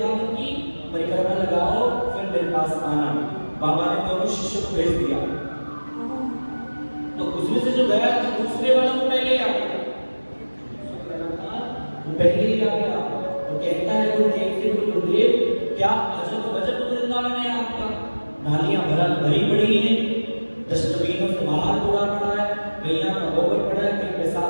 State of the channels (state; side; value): inverted; both; correlation -1.00